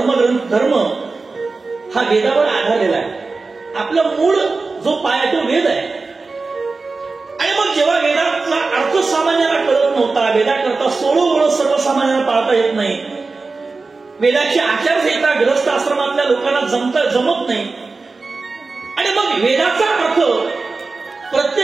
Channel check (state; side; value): quieter; left; 3.9 dB